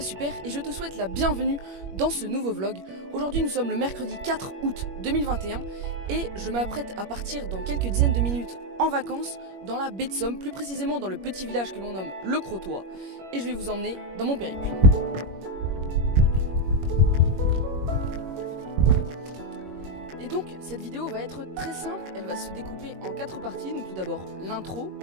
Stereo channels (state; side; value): late; left; 21 ms